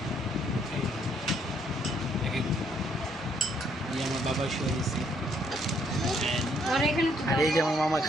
আমার বাবা শুয়ে দিচ্ছে। আর এই যে আমার মামা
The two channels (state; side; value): normal; both; correlation 0.69